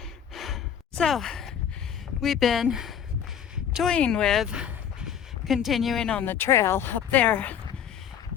So we've been toying with continuing on the trail up there,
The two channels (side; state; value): right; quieter; 8.8 dB